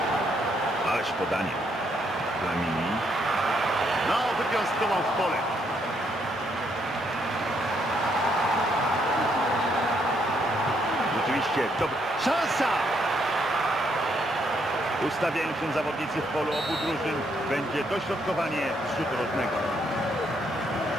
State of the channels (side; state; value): both; normal; correlation 0.73